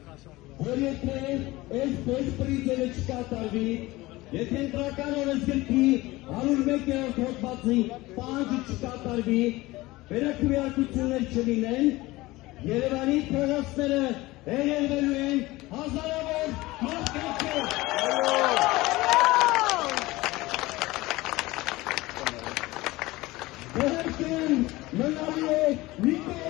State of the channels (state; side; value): quieter; right; 19.8 dB